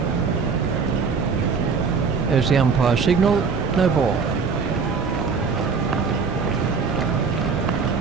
There's the umpire signal, no ball.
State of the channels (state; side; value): quieter; left; 5.3 dB